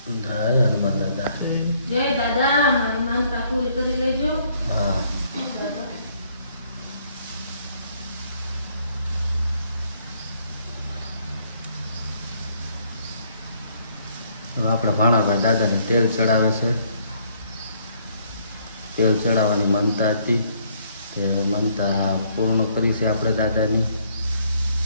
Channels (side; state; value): both; inverted; correlation -0.66